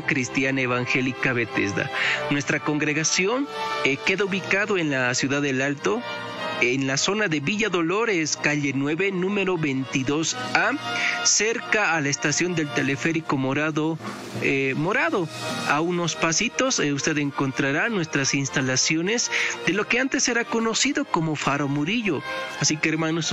Cristiana Evangélica Bethesda. Nuestra congregación queda ubicado en la ciudad del Alto, en la zona de Villa Dolores, calle 9, número 22A, cerca a la estación del teleférico Morado. A unos pasitos usted encontrará nuestras instalaciones de lo que antes era conocido como Faro Murillo. Así que, hermanos,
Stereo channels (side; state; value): both; identical; correlation 1.00